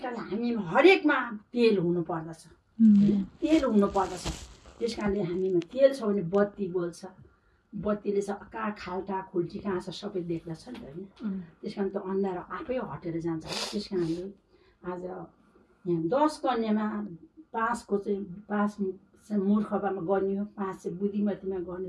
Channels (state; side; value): identical; both; correlation 1.00